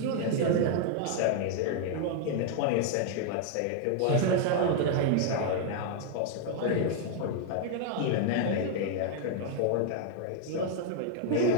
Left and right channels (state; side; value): different; both; correlation 0.00